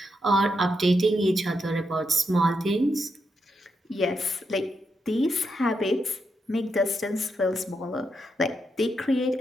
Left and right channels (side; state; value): both; normal; correlation 0.82